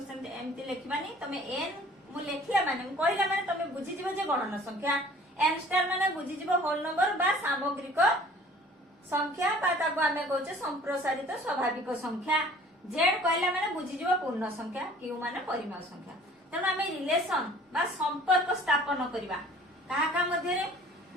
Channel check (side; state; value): both; normal; correlation 0.50